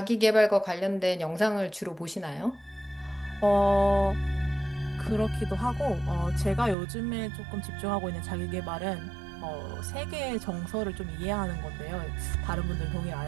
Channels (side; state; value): left; drops out; at 6.8 s